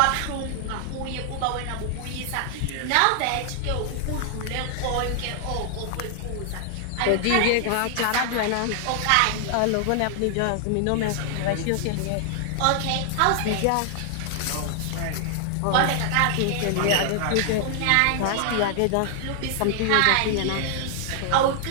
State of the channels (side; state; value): both; different; correlation 0.00